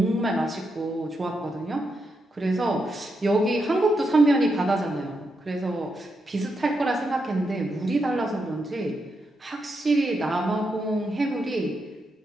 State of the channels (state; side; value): normal; both; correlation 0.83